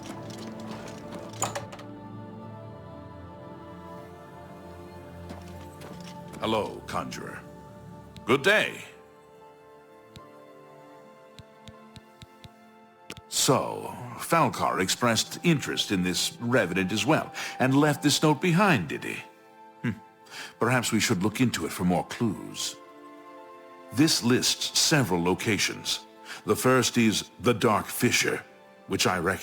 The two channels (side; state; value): both; identical; correlation 1.00